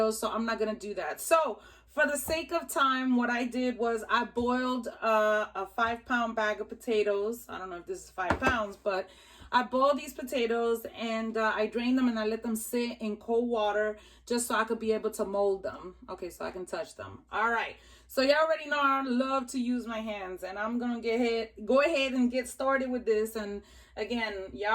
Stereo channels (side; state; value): both; identical; correlation 1.00